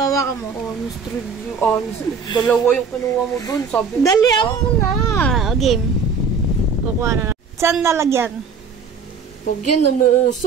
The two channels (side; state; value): left; quieter; 5.3 dB